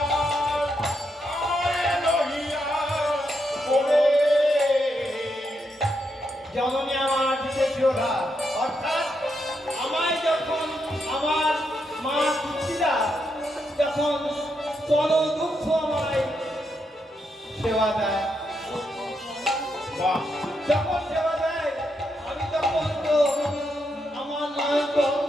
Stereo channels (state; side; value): normal; both; correlation 0.81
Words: আমারে লইয়া করে জননী আমার দিতে যোধা, অর্থাৎ আমায় যখন আমার মা পিতৃরা যখন চল দুঃখ আমায় সেবা দেয়, বাহ যখন সেবা দেয় আমি তখন তো আমার নয়